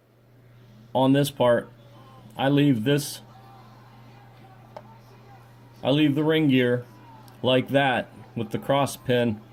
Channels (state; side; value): identical; both; correlation 1.00